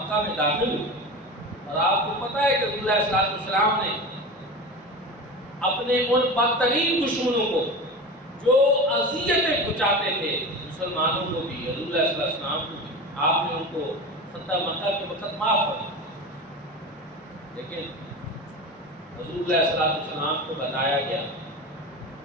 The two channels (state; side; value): normal; both; correlation 0.28